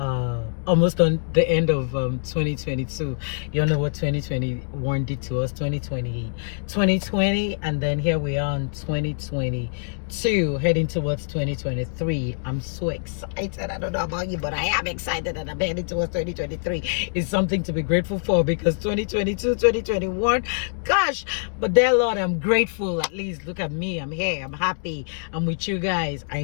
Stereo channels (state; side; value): silent; right; digital silence